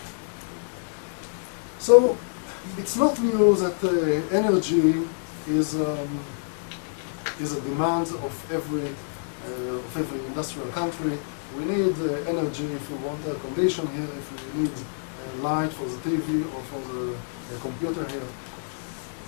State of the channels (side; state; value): right; silent; 60 dB below the other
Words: So it's not new that energy is a demand of every industrial country. We need energy if we want air condition here, if we need light for the TV or for the computer here.